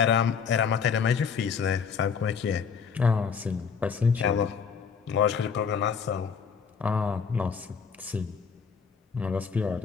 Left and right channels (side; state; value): right; quieter; 6.3 dB